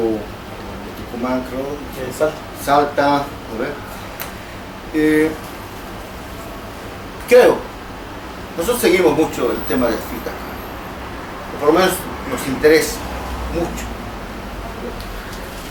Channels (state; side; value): identical; both; correlation 1.00